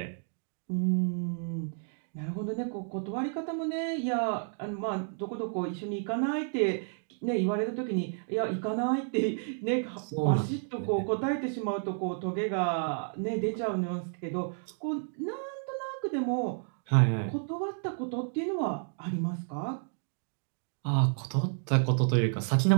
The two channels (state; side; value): silent; left; digital silence